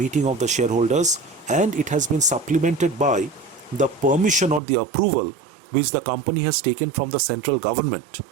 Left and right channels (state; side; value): drops out; left; at 4.6 s